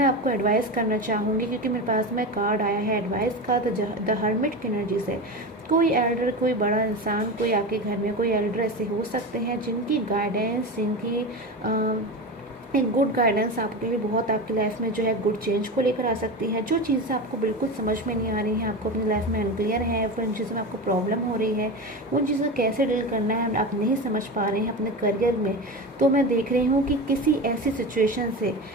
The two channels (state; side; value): normal; both; correlation 0.24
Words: आपको एडवाइस करना चाहूँगी, क्योंकि मेरे पास में कार्ड आया है एडवाइस का, द हर्मिट की एनर्जी से। कोई एल्डर, कोई बड़ा इंसान, कोई आपके घर में कोई एल्डर ऐसे हो सकते हैं जिनकी गाइडेंस, जिनकी एक गुड गाइडेंस आपके लिए बहुत आपकी लाइफ में जो है गुड चेंज को लेकर आ सकती है। जो चीज़ें आपको बिल्कुल समझ में नहीं आ रही हैं, आपको अपनी लाइफ में अनक्लियर है, फिर उन चीज़ों में आपको प्रॉब्लम हो रही है, उन चीज़ों को कैसे डील करना है आप नहीं समझ पा रहे हैं अपने करियर में, तो मैं देख रही हूँ कि किसी ऐसी सिचुएशन से